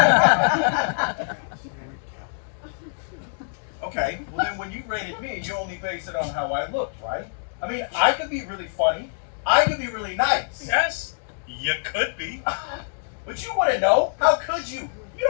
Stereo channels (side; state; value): right; silent; digital silence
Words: Okay, well then when you rated me, you only base it on how I looked, right? I mean, I could be really funny. I could be really nice. Yes, you could be. But you wouldn't know. How could you? You